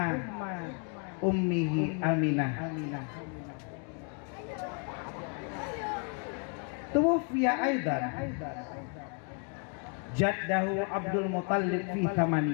ummihi Aminah. Tuwfiya aidan jaddahu Abdul Muttalib fi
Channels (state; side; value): quieter; right; 38.7 dB